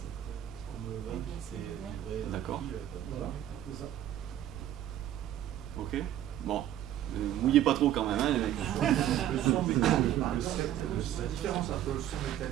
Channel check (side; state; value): left; quieter; 11.9 dB